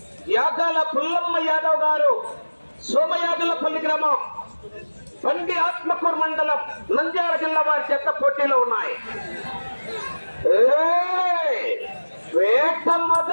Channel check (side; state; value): both; inverted; correlation -1.00